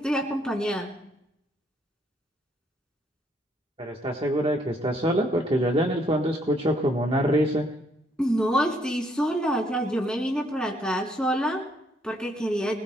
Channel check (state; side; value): normal; both; correlation 0.69